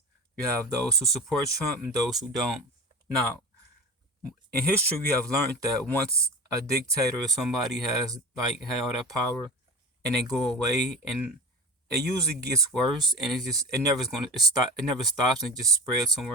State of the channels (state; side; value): normal; both; correlation 0.30